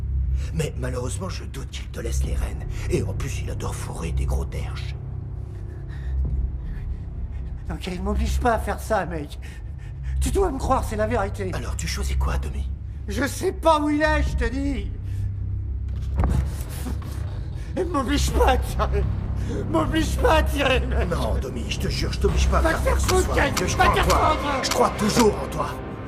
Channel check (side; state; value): both; identical; correlation 1.00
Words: Mais malheureusement, je doute qu'il te laisse les rênes. Et en plus, il adore fourrer des gros derches. Ok, il m'oblige pas à faire ça, mec. Tu dois me croire, c'est la vérité. Alors, tu choisis quoi, Domi? Je sais pas où il est, je te dis. Et m'oblige pas à tirer. M'oblige pas à tirer, mec. Non, Domi, je te jure, je t'oblige pas à Va faire te ce faire soir. foutre, Je crois en toi. Kane. Je crois toujours en toi.